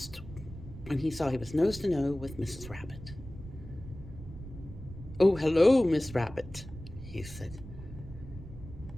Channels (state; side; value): noise; right; rumble, 13 dB below the sound